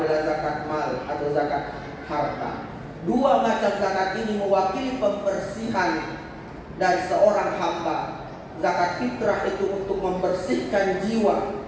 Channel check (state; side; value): identical; both; correlation 1.00